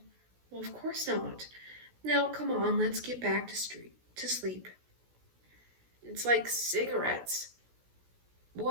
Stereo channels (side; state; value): left; late; 16 ms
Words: Well, of course not. Now, come on, let's get back to sleep. It's like cigarettes.